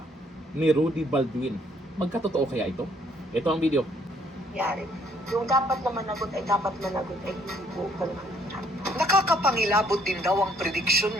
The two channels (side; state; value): both; normal; correlation 0.65